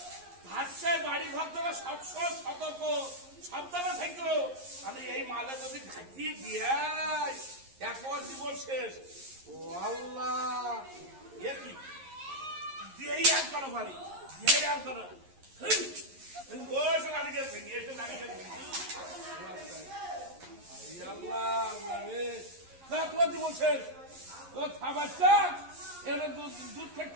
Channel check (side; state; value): left; late; 11 ms